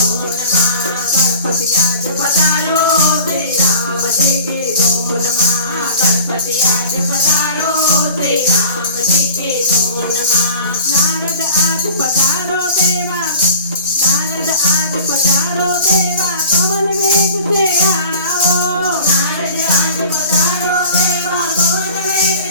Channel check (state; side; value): inverted; both; correlation -0.42